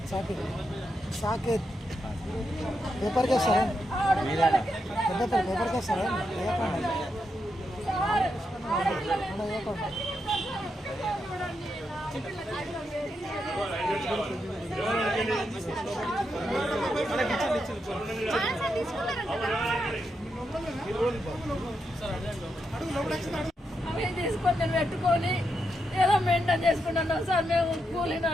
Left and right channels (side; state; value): both; normal; correlation 0.83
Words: Saketh Saketh paper కేసారా పేపర్ కేసారా సార్ అవి తీసుకొని నేను పెట్టుకొని ఏదో మెయింటైన్ చేసుకుంటున్నాం సార్. మేము